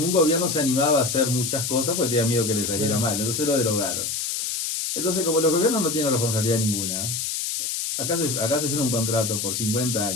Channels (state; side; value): noise; left; hiss, 2 dB below the sound